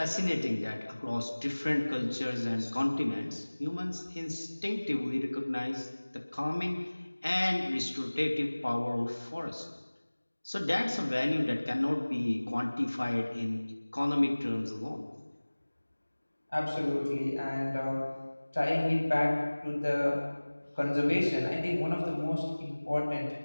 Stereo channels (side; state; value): both; inverted; correlation -1.00